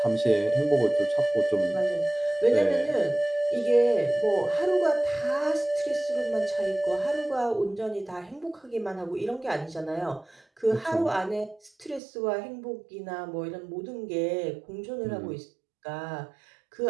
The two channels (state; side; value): drops out; left; at 12.0 s